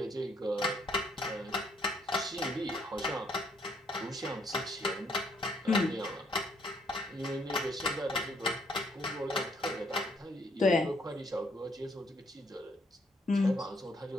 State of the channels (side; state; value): both; normal; correlation 0.69